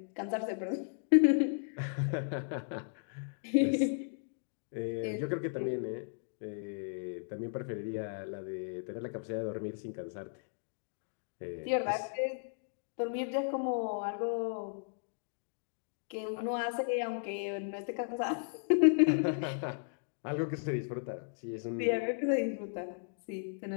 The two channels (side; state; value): right; silent; digital silence